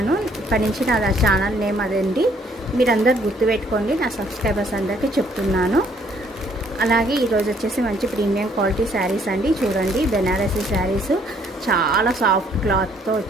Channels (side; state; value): both; normal; correlation 0.64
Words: ఇప్పటి నుంచి నా ఛానల్ నేమ్ అదండి. మీరు అందరు గుర్తుపెట్టుకోండి, నా సబ్స్క్రైబర్స్ అందరికీ చెప్తున్నాను. అలాగే ఈరోజు వచ్చేసి మంచి ప్రీమియం క్వాలిటీ శారీస్ అండి. చూడండి, బెనారసీ శారీస్ చాలా సాఫ్ట్ క్లాత్తో